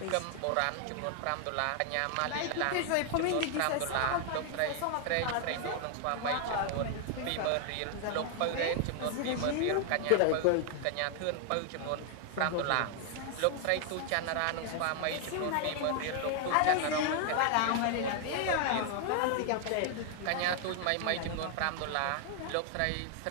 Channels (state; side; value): different; both; correlation 0.00